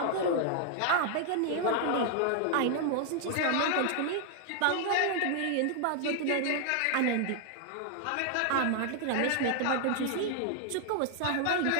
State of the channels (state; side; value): different; both; correlation 0.00